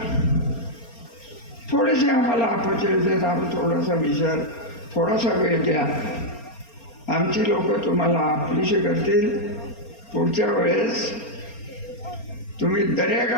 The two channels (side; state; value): right; late; 4.3 ms